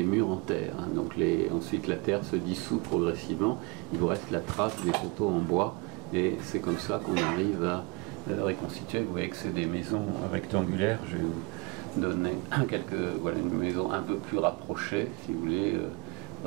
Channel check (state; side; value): quieter; left; 28.3 dB